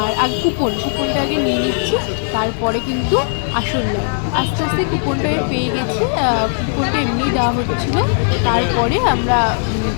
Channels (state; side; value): silent; right; 59 dB below the other